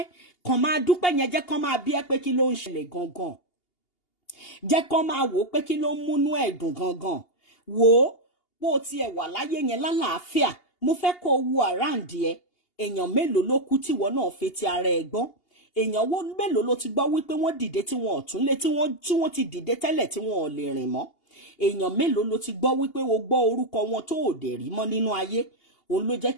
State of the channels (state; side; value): late; right; 2.8 ms